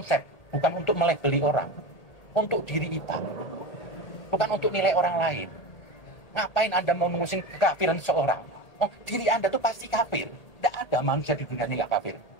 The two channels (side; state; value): right; late; 1.8 ms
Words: bukan untuk melabeli orang, untuk diri kita, bukan untuk nilai orang lain. Ngapain Anda mau mengusung kekafiran seseorang? Oh, diri Anda tuh pasti kafir. Tidak ada manusia di dunia ini nggak kafir.